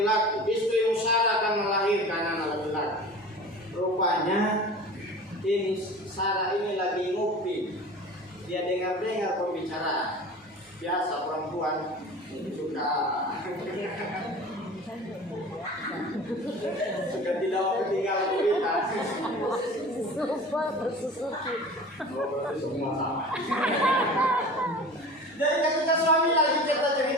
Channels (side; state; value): both; normal; correlation 0.38